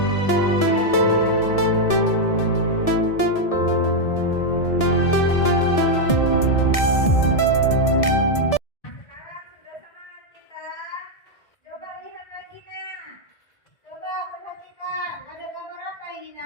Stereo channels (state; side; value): late; right; 1.7 ms